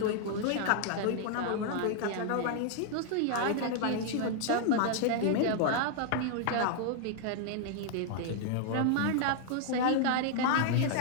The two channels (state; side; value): different; both; correlation 0.00